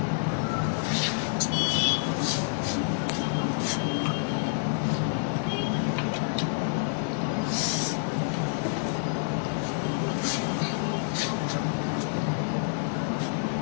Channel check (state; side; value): silent; right; digital silence